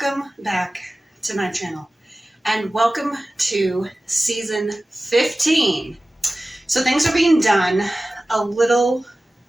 back to my channel and welcome to season 15. So things are being done a little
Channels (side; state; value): both; normal; correlation 0.96